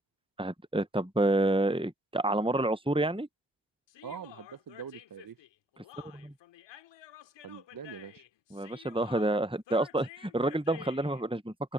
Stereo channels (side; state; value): both; normal; correlation 0.66